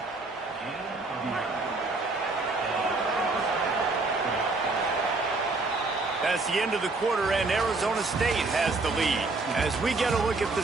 That's the end of the quarter, and Arizona State has the lead. As we get a look at the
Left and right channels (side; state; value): left; quieter; 3.5 dB